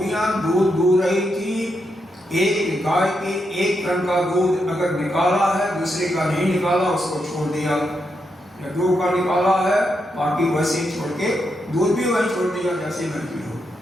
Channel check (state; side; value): normal; both; correlation 0.83